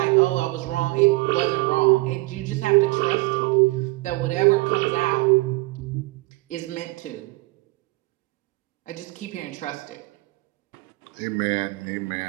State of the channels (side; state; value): left; quieter; 22.1 dB